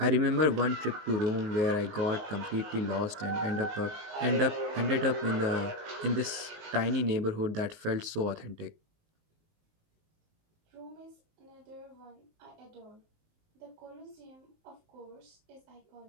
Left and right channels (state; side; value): late; left; 19 ms